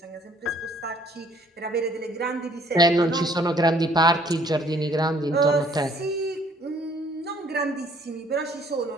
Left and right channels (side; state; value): both; normal; correlation 0.61